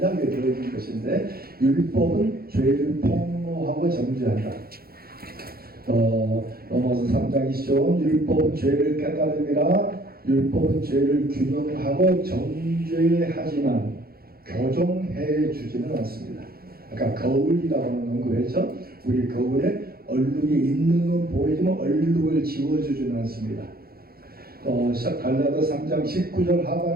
더해진 것인데, 율법은 죄를 폭로하고 정죄한다. 로마서 3장 20절 율법은 죄를 깨달음이라, 율법은 죄를 규명하고 정죄하지만 교정해 주지는 않습니다. 아까 거울이라고 하는 언급했죠. 우리 거울에 얼룩이 있는 건 보이지만 얼룩을 지워주지는 않습니다. 갈라디아 3장 19절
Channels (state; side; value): late; left; 0.44 ms